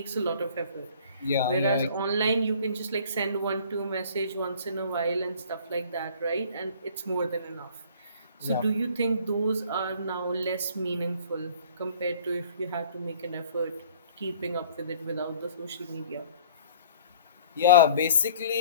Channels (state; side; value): inverted; both; correlation -0.51